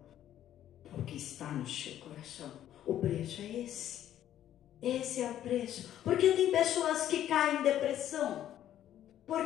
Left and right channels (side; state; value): right; quieter; 11.5 dB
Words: ao que está no seu coração. O preço é esse. Esse é o preço. Porque tem pessoas que caem em depressão.